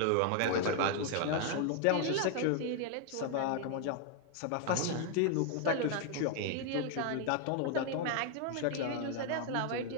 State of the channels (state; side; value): different; both; correlation 0.00